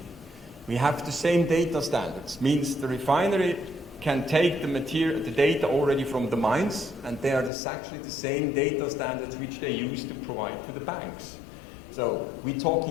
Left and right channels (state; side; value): drops out; right; at 7.5 s